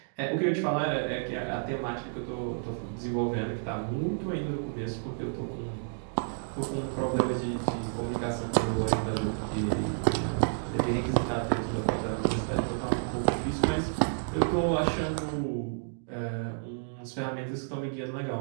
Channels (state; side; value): silent; left; digital silence